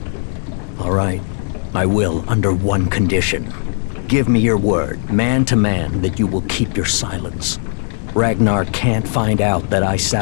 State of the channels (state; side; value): silent; right; 65 dB below the other